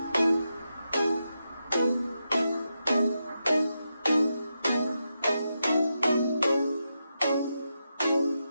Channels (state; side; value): inverted; both; correlation -0.87